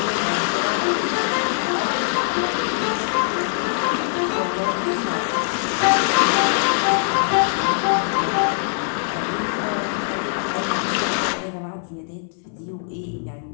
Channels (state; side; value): silent; right; 64 dB below the other